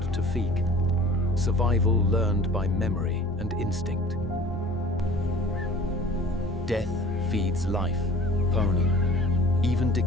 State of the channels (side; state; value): both; normal; correlation 0.45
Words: to feek. Survival learned by memory and instinct. Death feeds life, pony. Even